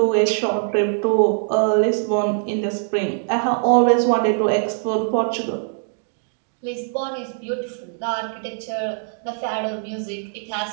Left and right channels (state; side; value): silent; left; digital silence